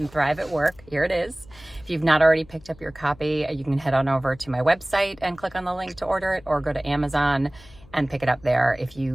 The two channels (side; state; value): left; noise; hum, 24 dB below the sound